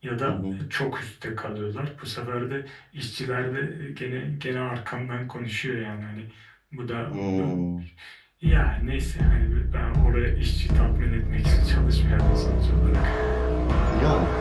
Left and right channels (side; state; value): both; identical; correlation 1.00